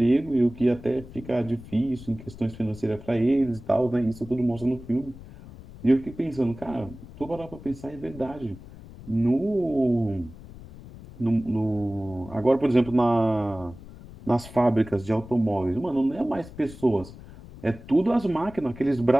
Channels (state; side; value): noise; left; rumble, 17 dB below the sound